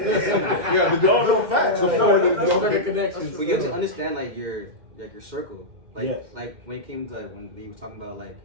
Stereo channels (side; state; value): left; late; 2.1 ms